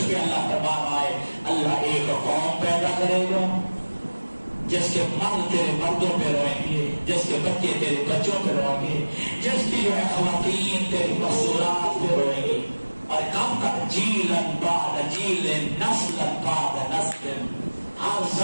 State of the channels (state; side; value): inverted; both; correlation -1.00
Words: پہ اللہ تبارک ہے، اللہ ایک قوم پیدا کرے گا جس کے مرد تیرے مردوں پہ روئیں گے، جس کے بچے تیرے بچوں پہ روئیں گے، جس کی جو ہے خواتین تیری مستورات پہ روئیں گی، اور کب تک جیلن بعد جیلن نسلن بعد نسل، ہر